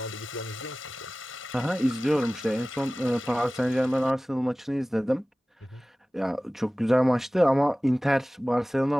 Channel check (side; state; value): both; normal; correlation 0.97